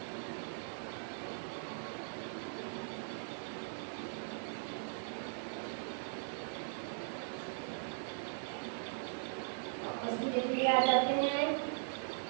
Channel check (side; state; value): left; silent; 51 dB below the other